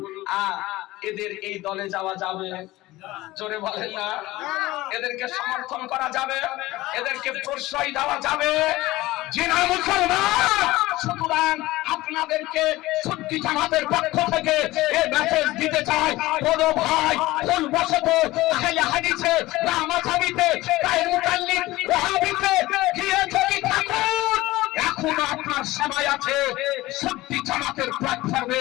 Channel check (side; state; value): right; quieter; 18.4 dB